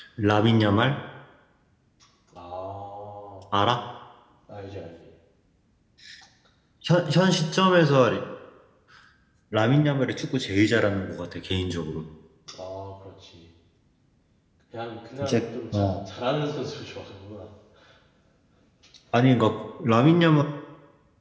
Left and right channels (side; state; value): both; identical; correlation 1.00